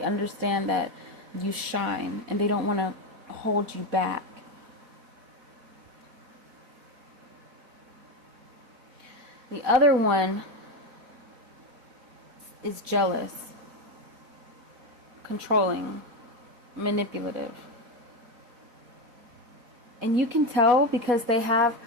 understand that you shine, and they don't want to hold you back. The other one is jealous, controlling, manipulative. And you can tell because they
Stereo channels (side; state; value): left; late; 4.1 ms